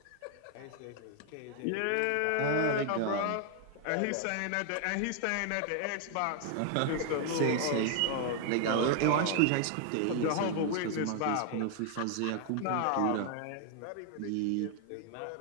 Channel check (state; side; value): different; both; correlation 0.00